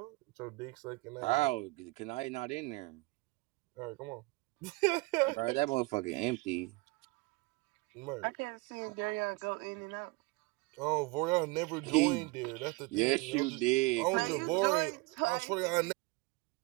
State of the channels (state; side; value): quieter; left; 24.8 dB